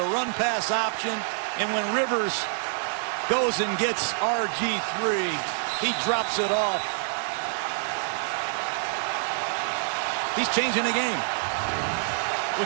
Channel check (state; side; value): silent; left; digital silence